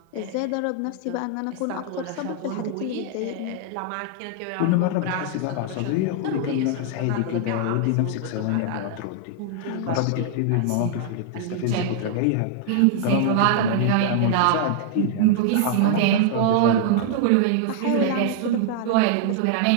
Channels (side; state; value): both; different; correlation 0.00